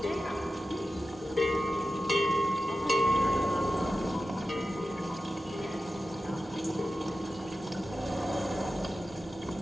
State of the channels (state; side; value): normal; both; correlation 0.93